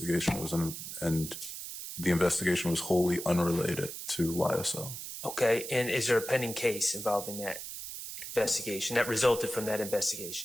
It was and the investigation was wholly unrelated to YSL. Okay, and is there a pending case involving that investigation that resulted from that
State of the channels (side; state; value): right; noise; hiss, 8 dB below the sound